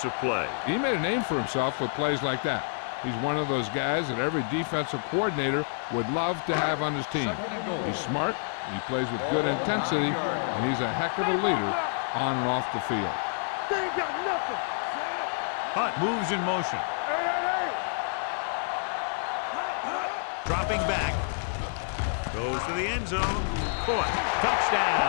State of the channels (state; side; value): silent; right; digital silence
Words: play. He made a name for himself with plays like that. He's one of those guys that every defensive coordinator would love to have on his team. He's smart, he plays with good intensity, and he's a heck of a leader on and off the field. Hunt moves in motion. Dropping back. Goes to the end zone. Caught.